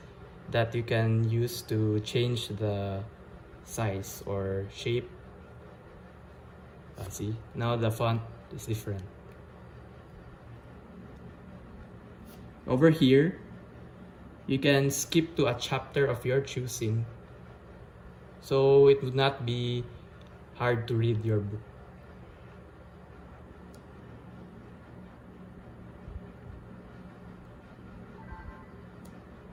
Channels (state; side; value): identical; both; correlation 1.00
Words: that you can use to change the size or shape. See, now the font is different. Over here, you can skip to a chapter of your choosing, so it would not be hard to read your book.